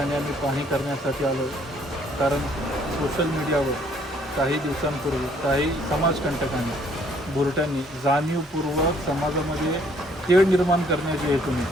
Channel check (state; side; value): normal; both; correlation 0.63